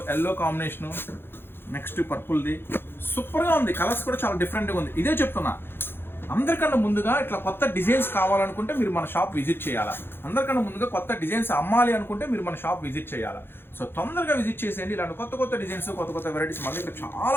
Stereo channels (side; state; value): right; late; 0.10 ms